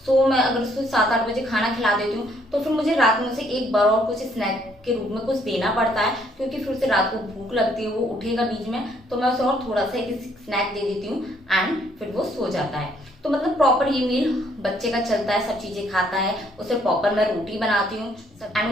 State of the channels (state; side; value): normal; both; correlation 0.67